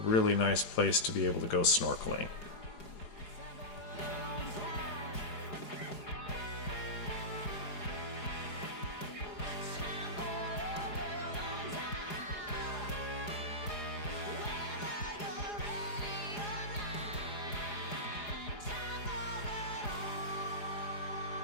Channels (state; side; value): late; right; 4.9 ms